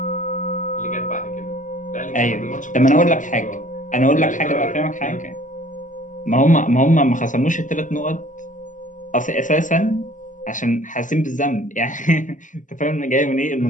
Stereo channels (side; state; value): right; late; 0.37 ms